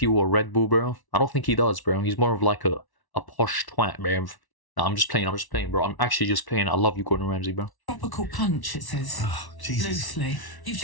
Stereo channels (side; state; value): right; late; 1.1 ms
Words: or Red Bull, bro? I don't think he does, bro. He's more of like a posh twat, bro. No, I'm just playing, bro. I'm actually just playing. I love you, Gordon Ramsay, bro. Tropical punch, it says. Oh, Jesus. Loosely. You've